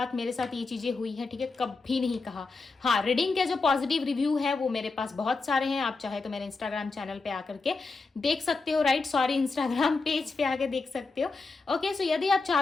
मेरे साथ ये चीज़ें हुई हैं, ठीक है, कभी नहीं कहा। हाँ, रीडिंग के जो पॉजिटिव रिव्यू है वो मेरे पास बहुत सारे हैं। आप चाहे तो मेरे इंस्टाग्राम चैनल पे आकर के देख सकते हो, राइट, सॉरी, इंस्टाग्राम पेज पे आके देख सकते हो, ओके। यदि आप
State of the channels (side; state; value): right; quieter; 4.0 dB